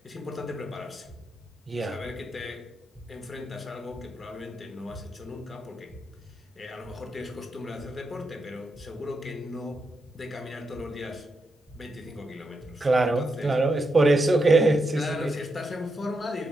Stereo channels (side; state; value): both; normal; correlation 0.84